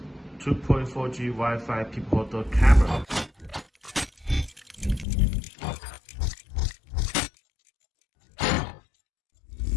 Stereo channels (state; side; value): drops out; right; at 5.1 s